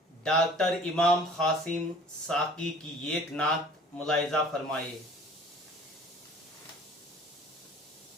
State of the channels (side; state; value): both; normal; correlation 0.48